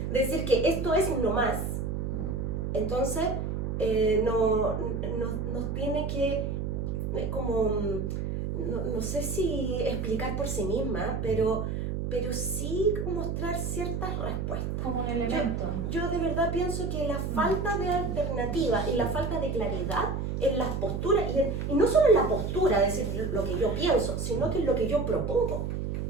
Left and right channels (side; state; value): right; noise; hum, 2 dB below the sound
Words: decir que esto es uno más. Entonces, nos tiene que, como, no sé si explicar por sí misma, pero sí mostrar ciertas respuestas. Como un elemento. Yo de verdad pienso que la falta de alternativa y la falta de claridad en las posturas, y no solo en la postura, decir lo que yo pienso, sino que en lo que yo propongo.